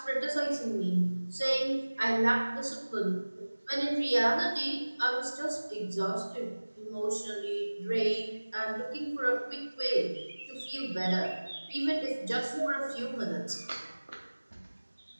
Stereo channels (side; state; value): both; inverted; correlation -1.00